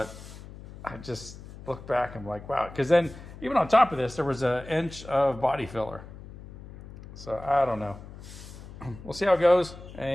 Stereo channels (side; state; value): left; noise; hum, 15 dB below the sound